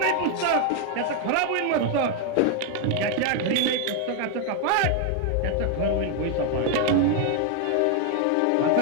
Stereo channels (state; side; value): different; both; correlation 0.00